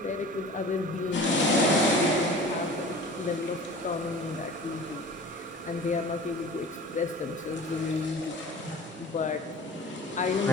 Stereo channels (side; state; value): both; normal; correlation 0.41